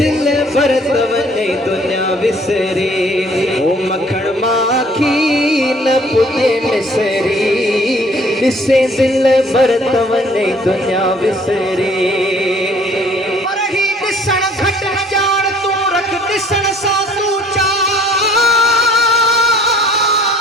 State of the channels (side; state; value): both; normal; correlation 0.56